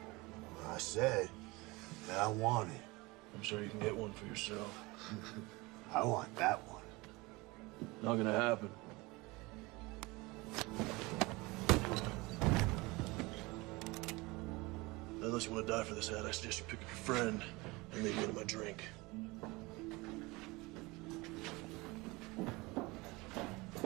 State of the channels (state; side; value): quieter; left; 23.6 dB